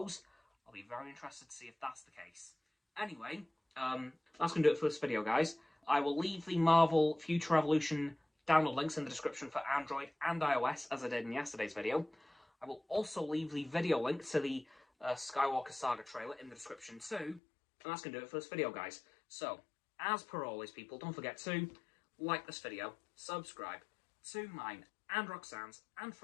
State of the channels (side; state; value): right; drops out; at 17.4 s